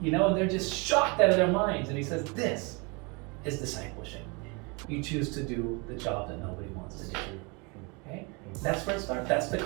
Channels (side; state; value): left; quieter; 30.0 dB